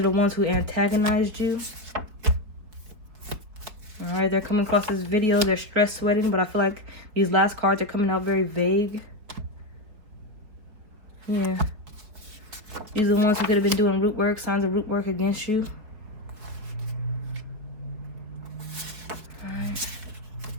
the ones who antagonized you. All right, they're coming across this video. They're stress sweating, but I feel like these last cards are coming out very vague. Yeah. These are the ones who could have been doing root work, signs of root work against you. All right.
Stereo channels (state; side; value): late; left; 4.8 ms